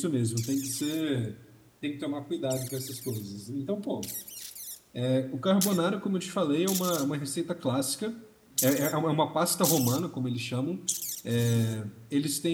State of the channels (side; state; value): both; identical; correlation 1.00